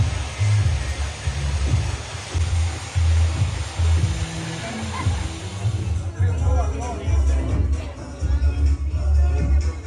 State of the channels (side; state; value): both; identical; correlation 1.00